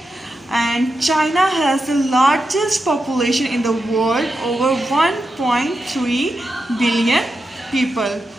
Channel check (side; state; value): both; normal; correlation 0.88